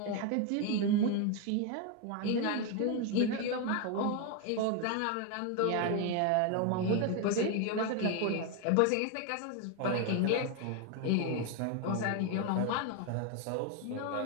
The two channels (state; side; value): different; both; correlation 0.01